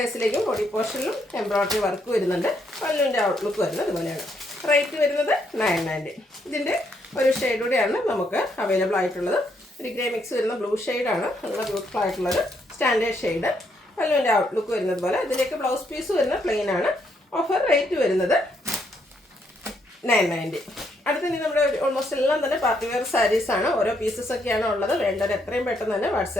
ബോഡി പോർഷനിലും എംബ്രോയ്ഡറി വർക്ക് വരുന്നുണ്ട്. പല്ലുവിൻ്റെ ഔട്ട്ലുക്ക് വരുന്നത് ഇതുപോലെയാണ്. റേറ്റ് വരുന്നത് 990. ഇതിൻ്റെ ഒരു ഷെയ്ഡ് കൂടെയാണ് നമുക്ക് അവൈലബിൾ ആയിട്ടുള്ളത്. ഒരു ഗ്രേ മിക്സ് വരുന്ന ബ്ലൂ ഷെയ്ഡാണ്. നല്ല ബ്യൂട്ടിഫുൾ ആയിട്ടുള്ളത് സ്റ്റാൻഡേർഡ് ഷെയ്ഡ്. പല്ലുവിൻ്റെ ഔട്ട്ലുക്ക് വരുന്നത് പോലെ. ഇതിലേക്ക് ബ്ലൗസ് പീസ് വരുന്ന പ്ലെയിൻ ആണ്. ഓഫർ റേറ്റ് വരുന്നത് 990. അടുത്തത് നമ്മുടെ ഓൾമോസ്റ്റ് എല്ലാം തന്നെ പാർട്ടി വെയർ സാരീസാണ്. ഓരോ പീസസ് ഒക്കെയാണ് ഉള്ളത്. വേണ്ടത് എത്രയും പെട്ടെന്ന് തന്നെ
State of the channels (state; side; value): normal; both; correlation 0.74